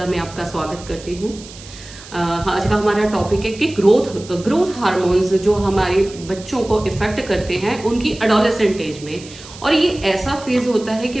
में आपका स्वागत करती हूँ। आज का हमारा टॉपिक है कि ग्रोथ हार्मोन्स जो हमारे बच्चों को इफेक्ट करते हैं उनकी एडोलेसेंट एज में। और ये ऐसा फेज होता है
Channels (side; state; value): right; noise; hiss, 17 dB below the sound